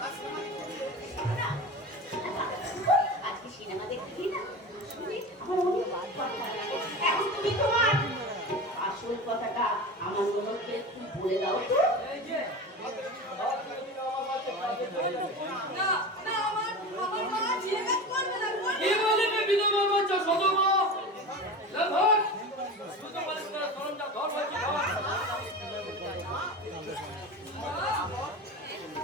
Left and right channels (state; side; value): normal; both; correlation 0.29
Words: না, আজকে সিনেমা দেখতে না শুনে আমার অনেক ভালো লাগে। এখন তুমি তোমার আসল কথাটা আমার মনকে একটু বলে দাও তো। এই যে আর যদি আমার কাছে কাজে চলে যাবে। না না আমার মা যে কাজ করবে না কি বলবে বিধবা বাচ্চা সদমা লভর শুধু বলিস না সরঞ্জাম ধর হয়েছে